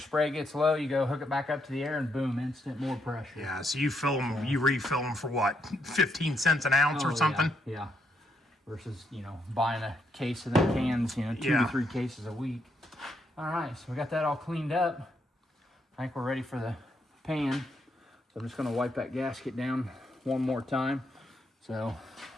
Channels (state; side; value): normal; both; correlation 0.77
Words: gets low, you go hook it back up to the air, and boom, instant more pressure. Yeah, so you refill them for what, 15 cents an ounce or something? Yeah. Versus buying a case of them cans, 2 to 3 cases a week. All right, so we got that all cleaned up. I think we're ready for the pan. So I'm just going to wipe that gasket down one more time. So